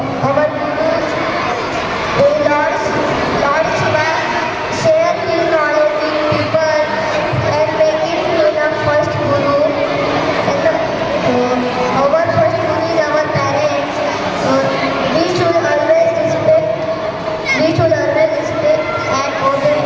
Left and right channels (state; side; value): identical; both; correlation 1.00